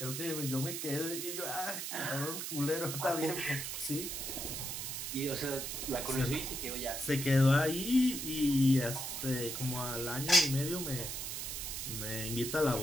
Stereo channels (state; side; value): noise; right; hiss, 4 dB below the sound